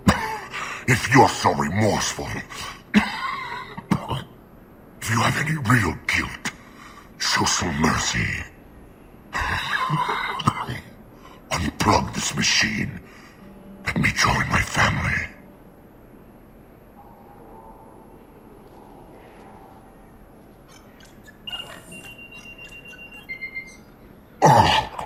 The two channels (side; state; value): both; identical; correlation 1.00